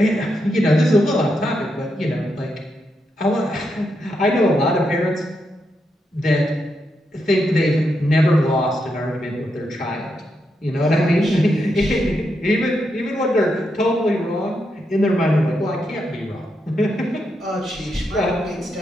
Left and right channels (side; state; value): both; normal; correlation 0.83